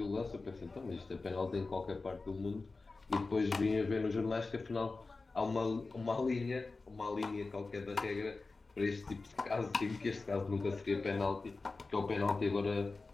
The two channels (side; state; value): right; quieter; 3.7 dB